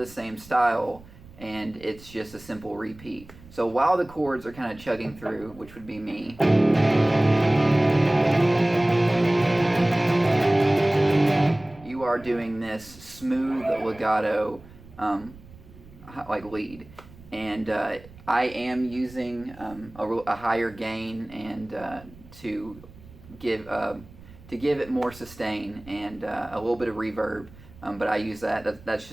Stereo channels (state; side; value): noise; right; rumble, 21 dB below the sound